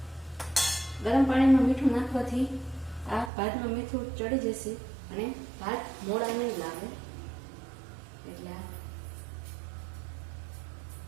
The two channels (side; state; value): left; drops out; at 3.3 s